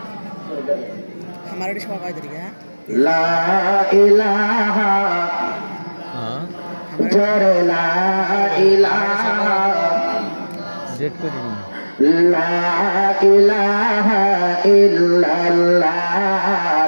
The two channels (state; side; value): inverted; both; correlation -1.00